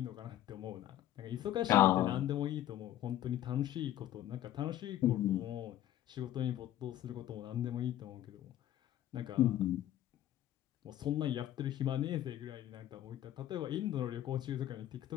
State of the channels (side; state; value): right; quieter; 12.7 dB